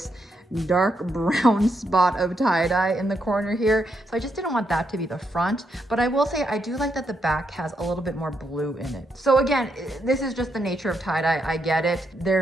dark brown spot of tie-dye in the corner here. So I just didn't want that to be the front. But I will say I do like that the back has a little bit more blue in it. So again, this is just the nature of tie-dye. I get it.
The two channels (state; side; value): normal; both; correlation 0.79